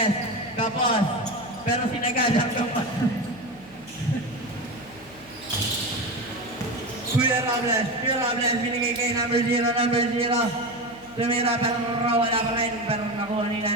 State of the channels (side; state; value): left; noise; hum, 25 dB below the sound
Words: Kapos. Pero sinagad ang kapos. Kuya Robles, binigay kay number 0. Tumira pero wala pa rin. Pero nakuha ni